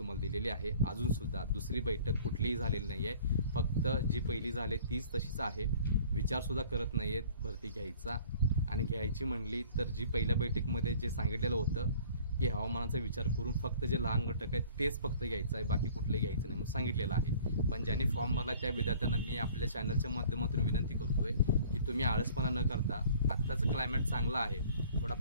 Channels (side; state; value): both; inverted; correlation -0.50